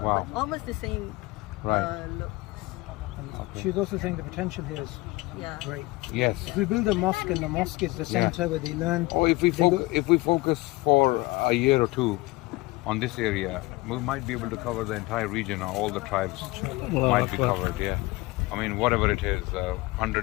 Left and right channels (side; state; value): right; quieter; 22.0 dB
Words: Wow. But almost the same look. She was also saying the potential here is great. Yes. If we build a mosque and the mosque is the center where they learn. Or if we focus for a year or two on this area, we might be able to cover the entire region, or all the tribes might be covered. Yeah. I mean, whatever it is,